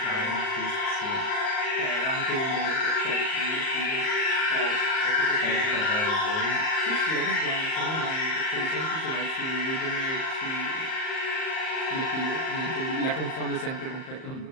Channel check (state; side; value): late; right; 38 ms